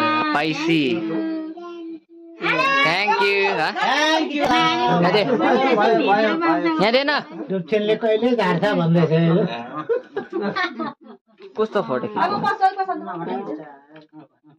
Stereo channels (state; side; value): identical; both; correlation 1.00